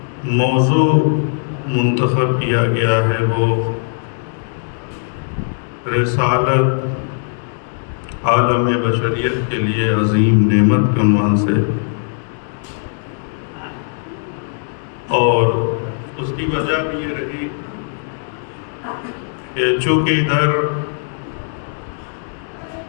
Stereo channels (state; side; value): silent; right; digital silence